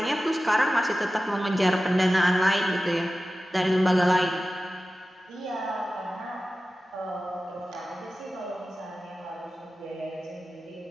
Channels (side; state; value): both; normal; correlation 0.95